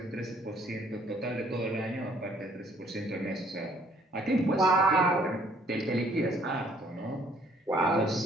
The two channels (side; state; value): both; normal; correlation 0.62